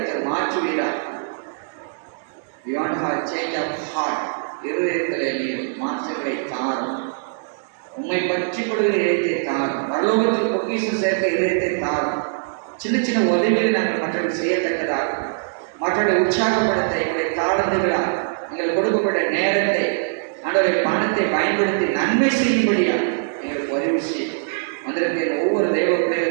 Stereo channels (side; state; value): left; silent; digital silence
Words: மாற்றுவீரார். Beyond her change of heart, இருதயத்திலே நீர் மாற்றங்களை தாரும். உண்மை பற்றி கொள்கிற இதயத்தை தாரும். பரலோகத்தில் பொக்கிஷம் சேர்க்க இதயத்தை தாரும். சின்ன சின்ன உதவிகளை நாங்கள் மற்றவர்கள் செய்யத்தக்கதாக, மற்றவர்களை உற்சாகப்படுத்த எங்களுடைய தாழ்ந்துகளால் எங்களுக்கு கொடுக்கப்பட்ட நேரத்தை, ஆண்டவரை பணத்தை பயன்படுத்தி நன்மை செய்யும்படியா எங்களுக்கு உதவி செய்யும். வந்திருக்கிற ஒவ்வொரு தெய்வ